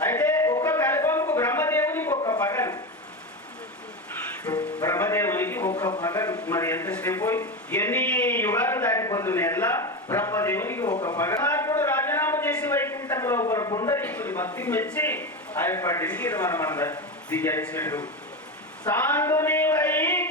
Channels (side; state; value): both; normal; correlation 0.18